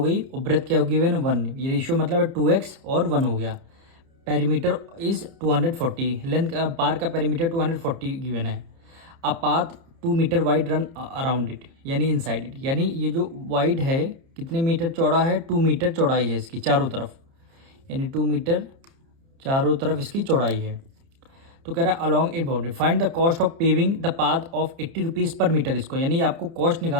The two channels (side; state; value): left; late; 30 ms